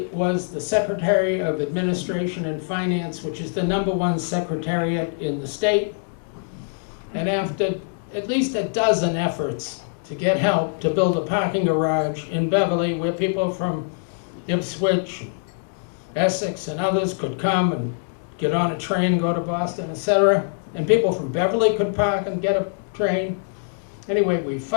was the Secretary of Administration and Finance, which is the #1 secretariat in the state. And after at least a dozen efforts to get help to build a parking garage in Beverly where people from Ipswich, Essex, and others could come and get on a train, go to Boston, etc., and people from Beverly could park and get a train. Anyway, we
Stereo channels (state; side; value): silent; right; 63 dB below the other